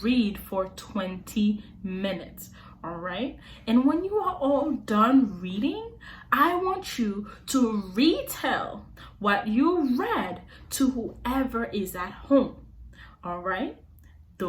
read for 20 minutes, all right? And when you are all done reading, I want you to retell what you read to whoever is at home, all right?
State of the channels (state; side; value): identical; both; correlation 1.00